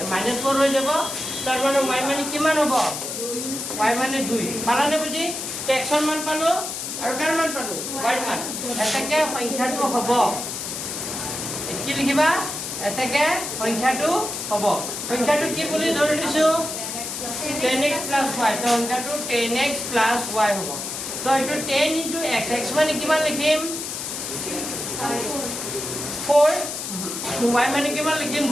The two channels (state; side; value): noise; left; hiss, 5 dB below the sound